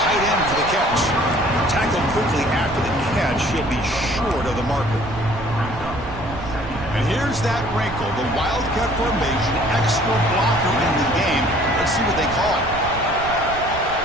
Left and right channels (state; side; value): noise; right; rumble, 11 dB below the sound